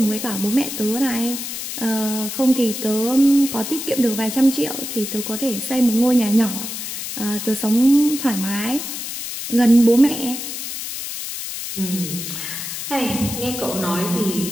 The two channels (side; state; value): left; noise; hiss, 6 dB below the sound